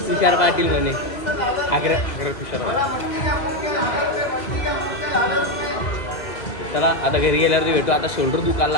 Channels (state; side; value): late; right; 2.0 ms